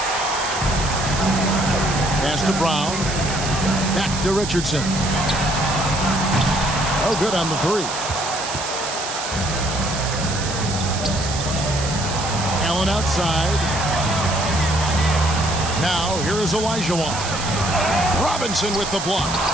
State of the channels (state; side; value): noise; right; hiss, 6 dB below the sound